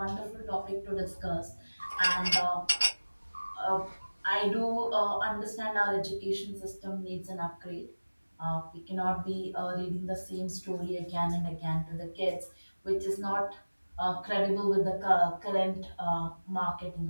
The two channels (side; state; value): both; inverted; correlation -1.00